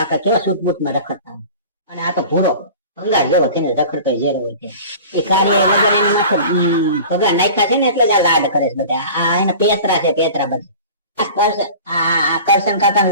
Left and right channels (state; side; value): inverted; both; correlation -0.40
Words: કેવા સૂટબૂટમાં રખડતા અને આ તો ભૂરો ભંગાર જેવો થઈને રખડતો ઝેર હોય છે. એ કાર્ય વગર એની માથે ભગા નાખ્યા છે ને એટલે જ આ લાડ કરે છે બધા. આ એના પેતરા છે પેતરા બધા. આ કરશન કાકા